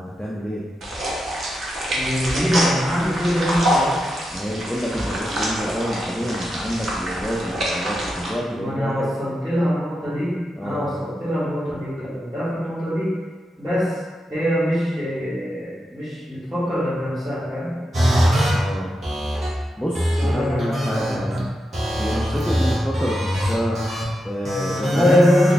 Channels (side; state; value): both; normal; correlation 0.87